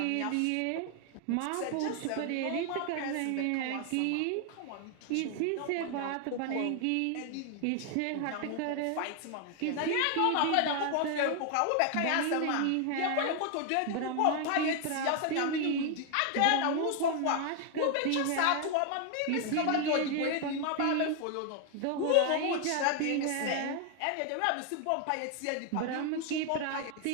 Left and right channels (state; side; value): different; both; correlation 0.00